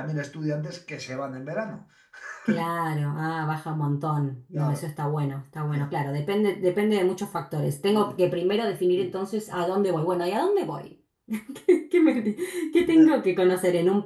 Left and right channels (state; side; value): identical; both; correlation 1.00